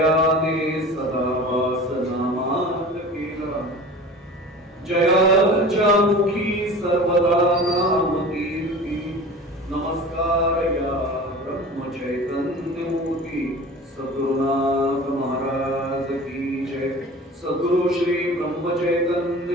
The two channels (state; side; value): normal; both; correlation 0.38